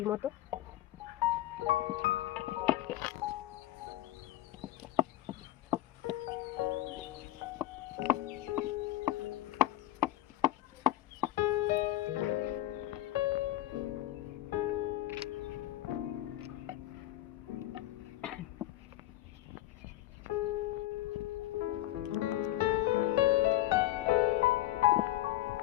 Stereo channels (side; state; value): right; quieter; 15.2 dB